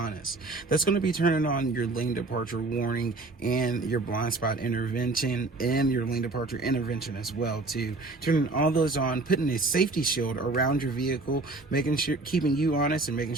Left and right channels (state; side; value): quieter; left; 3.3 dB